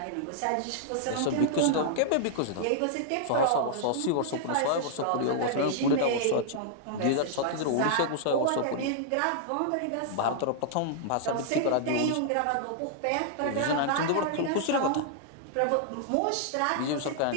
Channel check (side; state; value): both; different; correlation -0.01